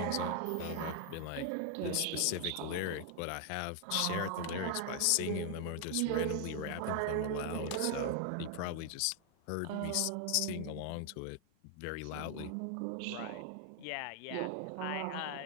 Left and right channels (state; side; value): different; both; correlation 0.00